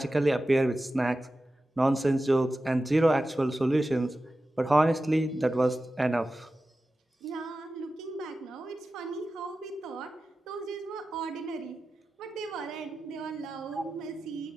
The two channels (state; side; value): normal; both; correlation 0.94